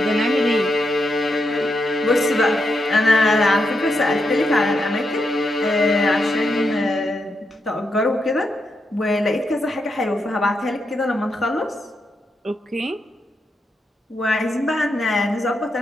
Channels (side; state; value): both; normal; correlation 0.83